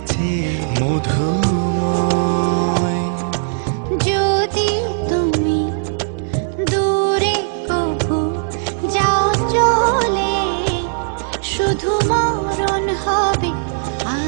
মধুময়। যদি তুমি দূরে কভু যাও চলে, শুধু মরণ হবে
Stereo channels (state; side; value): silent; left; digital silence